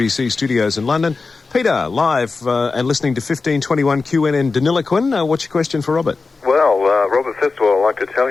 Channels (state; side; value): quieter; right; 4.2 dB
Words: studios in London. Peter, live and listening to 1521 QNN Deniliquin. What's your question for Robert? Well, Robert, first of all, I'd like to tell